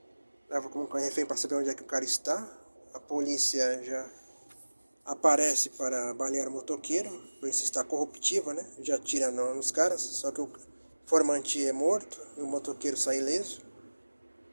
Leva como refém para saber onde é que o cara está. A polícia já aparece para balear o motoqueiro, a polícia está corruptiva, né? Já atira nos caras, só que o formante é morto e o motoqueiro sai ileso.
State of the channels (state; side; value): inverted; both; correlation -1.00